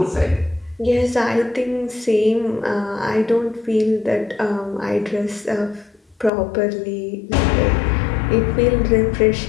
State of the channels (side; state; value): right; drops out; at 6.3 s